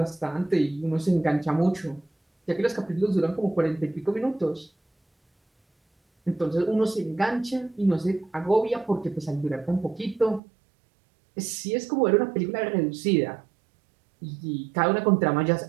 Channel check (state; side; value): drops out; left; at 10.4 s